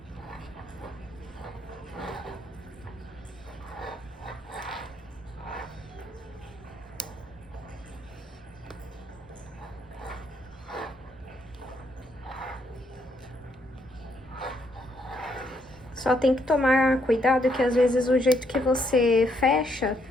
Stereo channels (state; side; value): normal; both; correlation 0.74